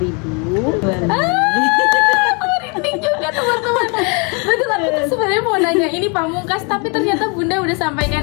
Merinding juga teman-teman. Betul, aku tuh sebenarnya mau nanya ini pamungkas, tapi ternyata Bunda udah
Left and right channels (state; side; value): quieter; right; 33.5 dB